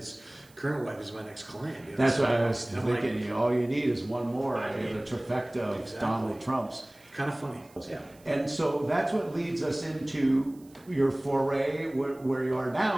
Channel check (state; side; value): noise; right; hiss, 27 dB below the sound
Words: current wife as my next client. You know? That's so what I was thinking. Like, all you need is one more. I mean, the trifecta of exactly. Donald Trumps. Kind of funny. Yeah. And so that's what leads us into your foray where you are